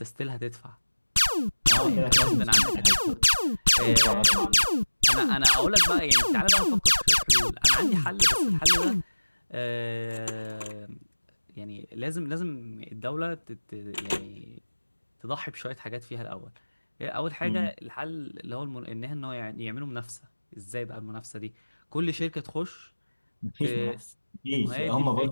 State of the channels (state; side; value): inverted; both; correlation -1.00